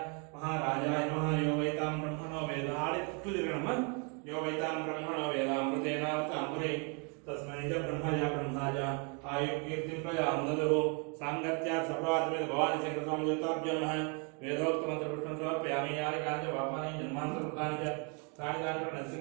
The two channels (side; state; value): left; quieter; 36.0 dB